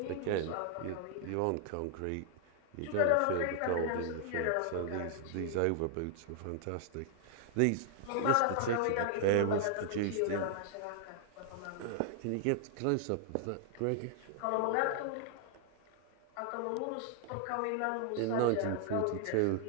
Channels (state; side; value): different; both; correlation 0.00